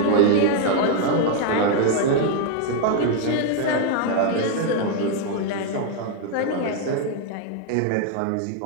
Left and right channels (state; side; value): different; both; correlation 0.00